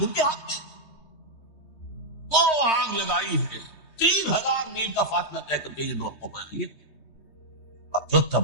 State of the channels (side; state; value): right; late; 3.2 ms